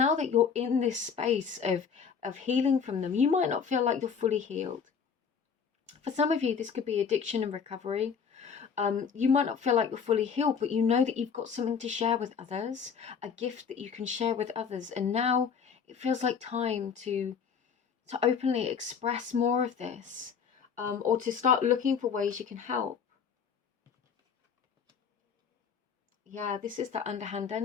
that you're in this space of healing from them, you might not feel like you're fully healed. For some of you, this could be addiction and recovery. You might not feel like you're fully healed, but you know that you've got something to share with others, a gift that you can share with others. And now it feels like time to openly express more of this, or to start looking for ways you can help. Yeah, this is the underhand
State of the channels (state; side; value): quieter; right; 6.5 dB